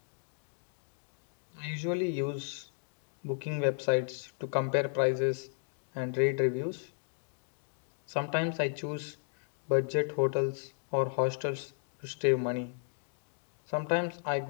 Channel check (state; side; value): silent; right; 55 dB below the other